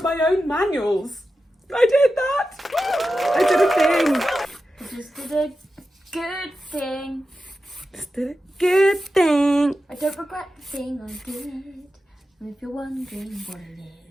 my own manuals. I did that. I did a thing. I just did a good thing. Just did a good thing. I don't regret the thing I did. And if you're wondering what it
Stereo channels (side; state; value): both; normal; correlation 0.91